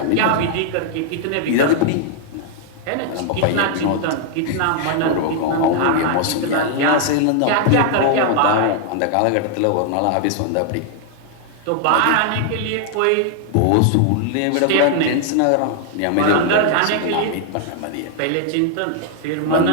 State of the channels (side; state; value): both; different; correlation 0.00